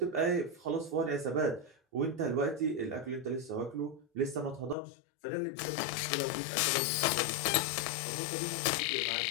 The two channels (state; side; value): drops out; right; at 4.8 s